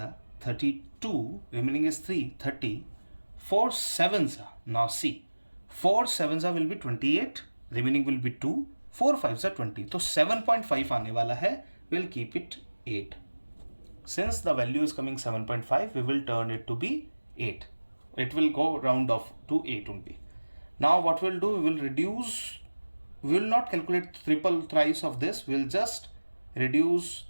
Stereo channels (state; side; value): inverted; both; correlation -1.00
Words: are 32, remaining is 3, 30. 4 7s are, now see, 4 7s are will be 28, remaining will be 2, 4 5s are 20. So 7.5 आने वाला है, we'll keep it 8. Since the value is coming 7.5, we will turn it to be 8. It will go round off to 8 only. Now what we'll do, we will reduce, we will not calculate triple thrice of this, we'll just reduce